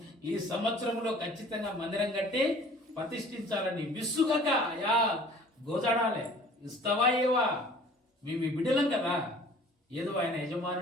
ఈ సంవత్సరంలో ఖచ్చితంగా మందిరం కట్టి ప్రతిష్ఠించాలని విసుగక, అయ్యా గోజాడాలి. ఇస్తావా ఏవా? మేము ఈ బిడ్డలం కదా, ఏదో ఆయన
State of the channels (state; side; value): normal; both; correlation 0.49